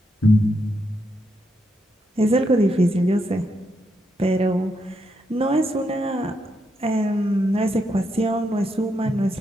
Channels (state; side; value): normal; both; correlation 0.81